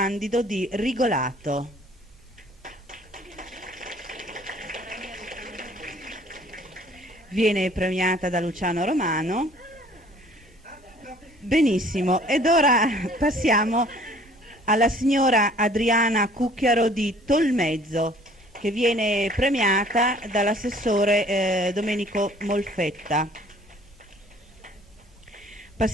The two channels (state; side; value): normal; both; correlation 0.55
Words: di Rigolato. Viene premiata da Luciano Romano. Benissimo, ed ora passiamo alla signora Adriana Cucchiaro di Tolmezzo, che viene premiata dall'assessore Domenico Molfetta.